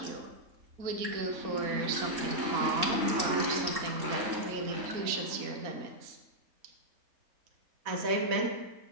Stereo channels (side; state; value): left; late; 3.7 ms